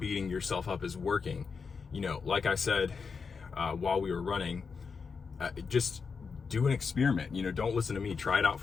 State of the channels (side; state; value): right; quieter; 5.4 dB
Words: yourself up is working, you know, like I said, while we were running, just do an experiment. You know, don't listen to me, try it out